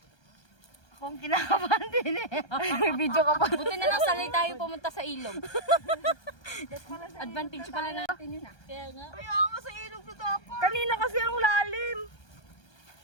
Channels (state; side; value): late; right; 1.3 ms